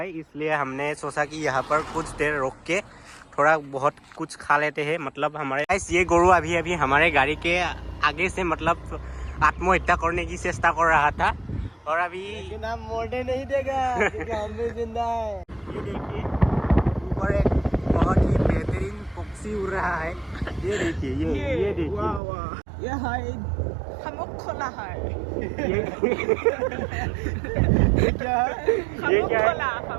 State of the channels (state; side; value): drops out; left; at 22.2 s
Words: इसलिए हमने सोचा कि यहाँ पर कुछ देर रोक के थोड़ा बहुत कुछ खा लेते हैं। मतलब हमारे ये गोरू अभी अभी हमारे गाड़ी के आगे से मतलब आत्महत्या करने की चेष्टा कर रहा था, और अभी लेकिन हम मोड़ने नहीं देगा क्योंकि हम भी जिंदा है। ये देखिए ऊपर एक बहुत ही बेहतरीन पक्षी उड़ रहा है। ये देखिए, ये देखिए, वाह वाह, ये है खमुक खोला है। ये क्या है? खमुक खोला,